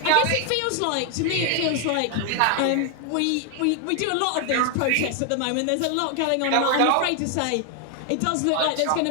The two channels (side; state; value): both; different; correlation 0.00